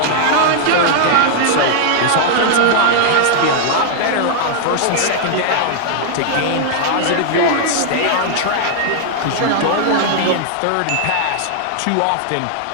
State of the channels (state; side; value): different; both; correlation -0.01